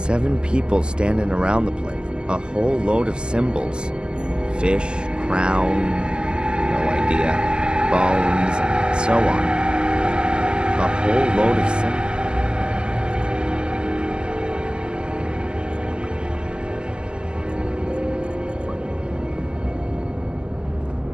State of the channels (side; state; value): left; late; 0.047 ms